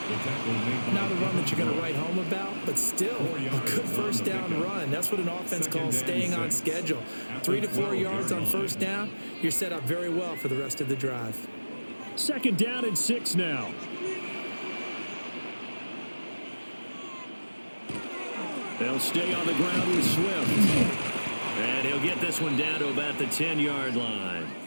Not a run that you're going to write home about, but still a good first down run. That's what an offense calls staying on schedule. 3 to 4 yards on first down, you're set up very well for the rest of the drive. 2nd down and 6 now. They'll stay on the ground with Swift. And he'll get this one down to about the 10-yard line.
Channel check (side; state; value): both; inverted; correlation -1.00